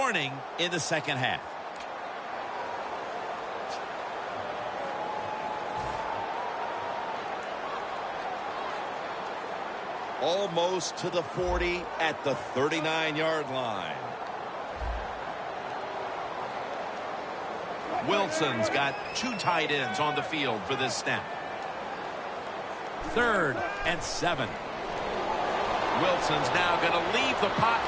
in the second half. Almost to the 40 at the 39-yard line. Wilson's got two tight ends on the field for this snap. 3rd and 7. Wilson's now going to leave the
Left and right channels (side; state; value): both; identical; correlation 1.00